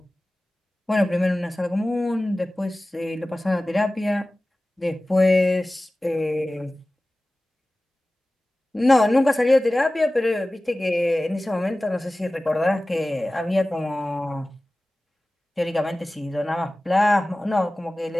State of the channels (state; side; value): normal; both; correlation 0.97